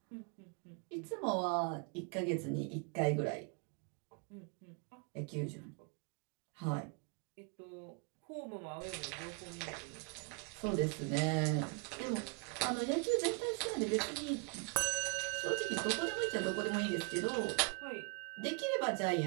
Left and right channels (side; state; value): left; quieter; 33.7 dB